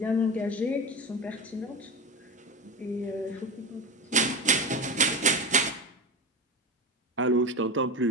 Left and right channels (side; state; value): both; normal; correlation 0.22